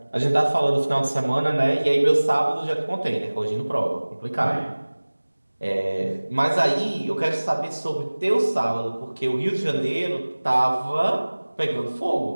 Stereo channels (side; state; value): both; inverted; correlation -1.00